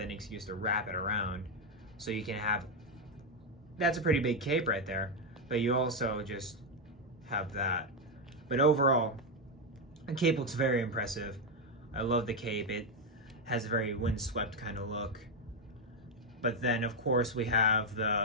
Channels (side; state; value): both; normal; correlation 0.04